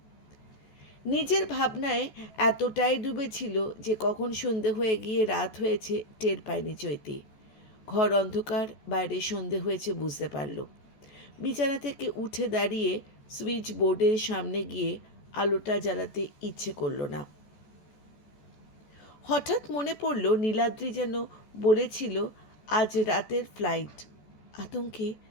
নিজের ভাবনায় এতটাই ডুবেছিল যে কখন সন্ধে হয়ে গিয়ে রাত হয়েছে টের পায়নি চৈতি। ঘর অন্ধকার, বাইরে সন্ধে হয়েছে বুঝতে পারল। বিছানা থেকে উঠে দাঁড়িয়ে সুইচ বোর্ডের সামনে গিয়ে আলোটা জ্বালাতে ইচ্ছে করল না। হঠাৎ মনে পড়ল নীলাদ্রি যেন বলেছিল আজ রাতের ফ্লাইট। আতঙ্কে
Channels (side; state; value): right; late; 14 ms